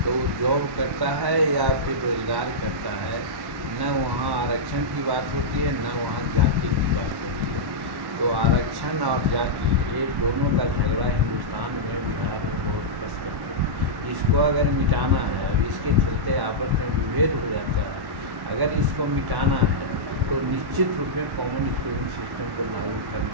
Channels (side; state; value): left; late; 1.1 ms